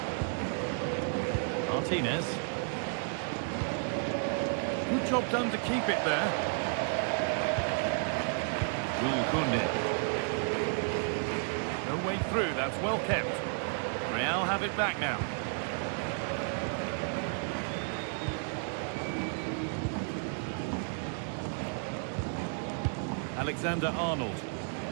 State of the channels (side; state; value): left; silent; 56 dB below the other